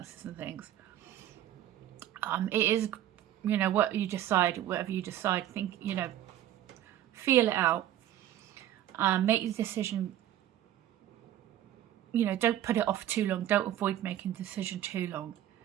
and things. It is, you know, what you decide, whatever you decide, think, you know, feel it out, make the decision. You know, don't put it off too long. Don't avoid making the decision too long,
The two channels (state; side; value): quieter; left; 12.2 dB